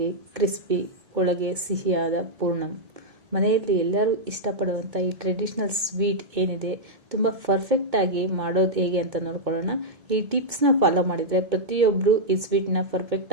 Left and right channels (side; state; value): left; late; 2.2 ms